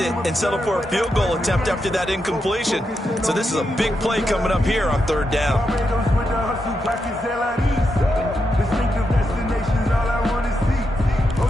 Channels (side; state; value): both; normal; correlation 0.84